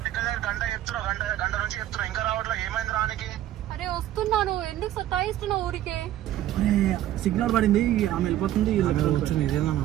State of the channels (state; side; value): quieter; left; 13.1 dB